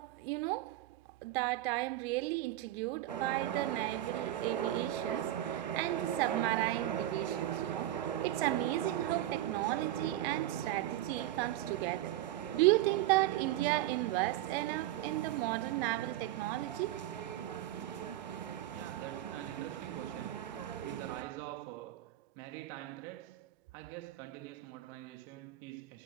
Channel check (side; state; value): left; quieter; 14.1 dB